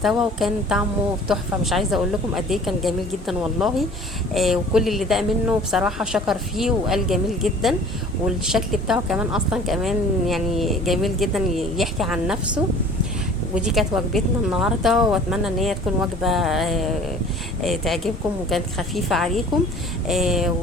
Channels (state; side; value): normal; both; correlation 0.48